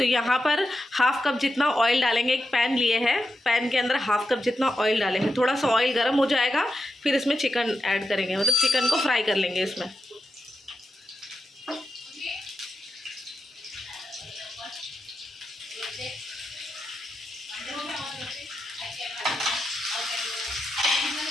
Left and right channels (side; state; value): both; normal; correlation 0.88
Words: यहाँ पर 1/2 कप जितना ऑयल डालेंगे। एक पैन लिए हैं, पैन के अंदर 1/2 कप जितना ऑयल डालेंगे। थोड़ा सा ऑयल गर्म हो जाएगा, फिर इसमें चिकन ऐड करेंगे, मतलब चिकन को फ्राई कर लेंगे इसमें।